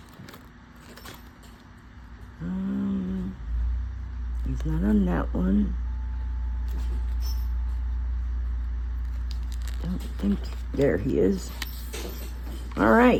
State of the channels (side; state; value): both; identical; correlation 1.00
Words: He's not on that one. Don't think, there he is. All